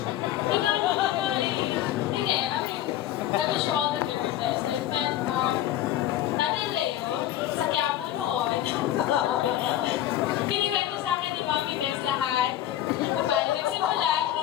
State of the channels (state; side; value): quieter; right; 12.6 dB